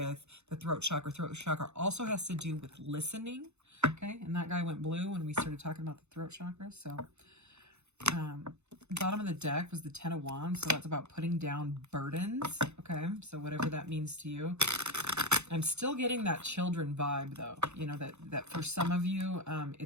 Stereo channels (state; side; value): late; left; 0.81 ms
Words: the throat chakra. Throat chakra also has to do with listening. Okay. And that guy went blue when we started talking about the throat chakra. So bottom of the deck was the 10 of Wands. So that's about putting down burdens. Okay. So whatever that means to you. I'm still getting that children vibe, though. You know, that for some of you,